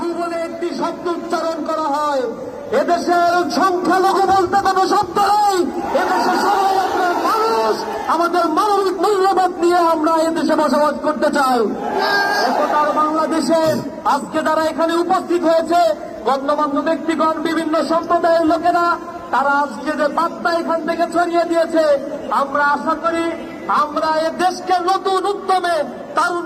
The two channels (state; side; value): identical; both; correlation 1.00